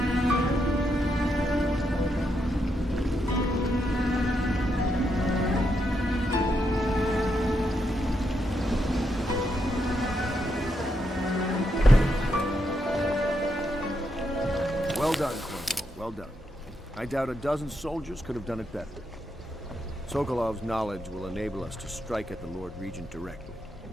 Well done, Corporal. Well done. I doubt a dozen soldiers could have done it better. Sokolov's knowledge will enable us to strike at the Lord Regent directly,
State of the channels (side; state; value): both; normal; correlation 0.81